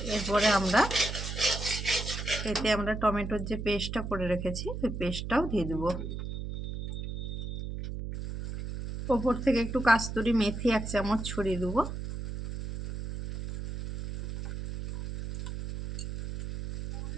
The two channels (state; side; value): noise; right; hum, 6 dB below the sound